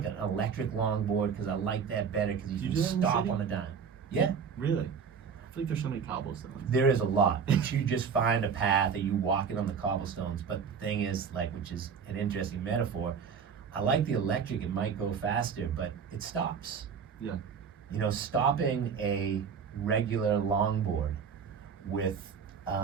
an electric longboard because I like that better because you do can that in the stop city? on a dime. Yeah, Really? I feel like there's so many cobblestones. there is a lot, but you just find a path and you walk it on the cobblestones. But the thing is, like, which is an interesting metaphor. I like the electric; it might go faster, but it stops. Yeah. You know, stopping a regular longboard with,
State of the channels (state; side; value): quieter; left; 6.5 dB